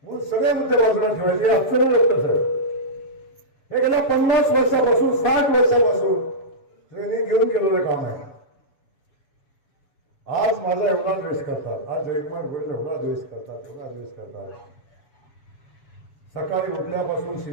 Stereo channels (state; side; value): late; right; 7.2 ms